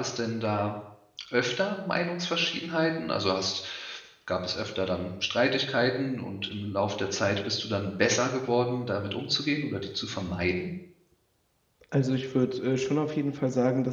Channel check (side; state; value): both; identical; correlation 1.00